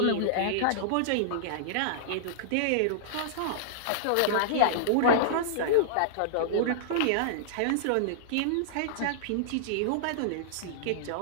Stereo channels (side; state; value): both; different; correlation -0.01